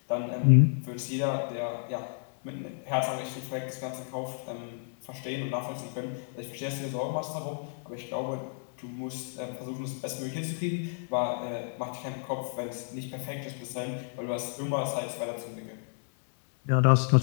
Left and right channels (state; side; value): silent; right; 57 dB below the other